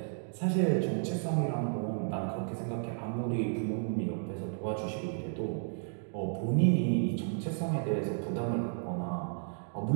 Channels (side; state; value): left; silent; digital silence